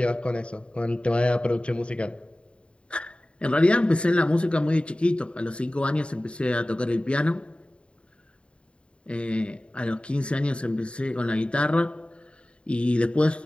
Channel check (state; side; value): late; right; 0.057 ms